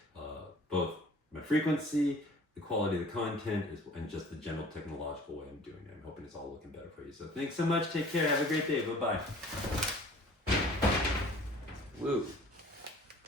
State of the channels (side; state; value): both; normal; correlation 0.49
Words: both my frequency, the quality of the content, and just the general technological way I'm doing it. I'm hoping it's all looking better for you. So thanks so much. Take care. Have a great day. Bye-bye. Woo.